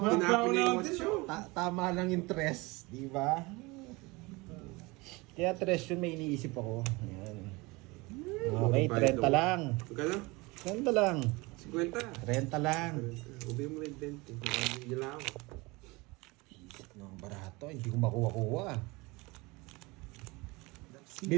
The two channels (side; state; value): left; quieter; 24.2 dB